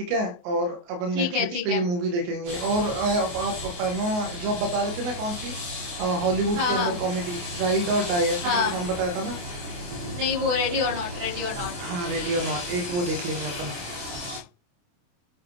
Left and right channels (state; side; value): late; left; 28 ms